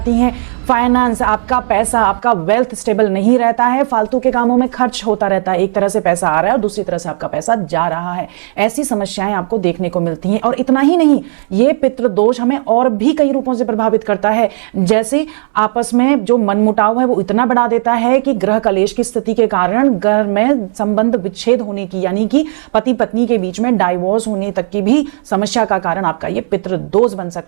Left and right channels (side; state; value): left; silent; digital silence